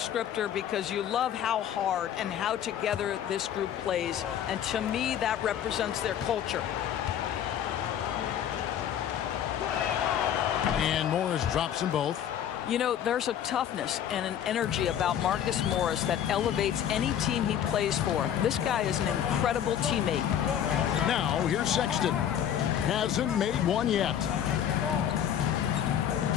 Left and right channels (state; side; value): quieter; right; 9.8 dB